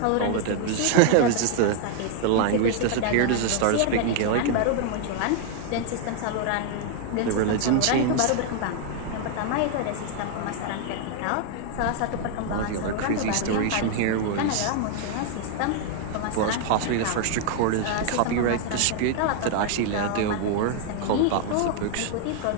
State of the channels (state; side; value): different; both; correlation 0.00